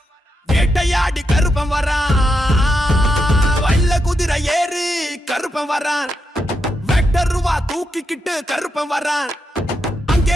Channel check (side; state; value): both; normal; correlation 0.84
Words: வேட்டையாடி கருப்பன் வரான், வல்ல குதிரை ஏறி கருப்பன் வரான், வெக்டர் ரூபா தூக்கிக்கிட்டு கருப்பன் வரான்,